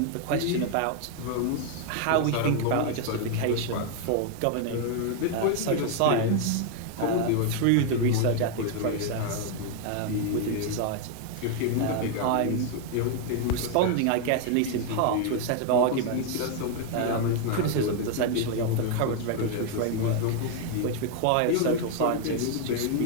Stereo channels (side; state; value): both; different; correlation 0.00